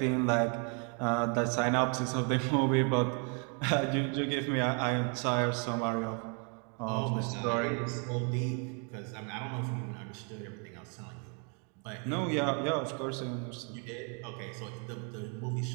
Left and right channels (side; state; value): left; quieter; 37.9 dB